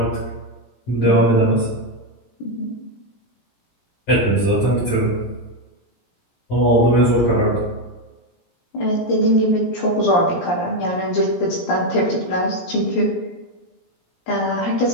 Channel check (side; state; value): right; late; 17 ms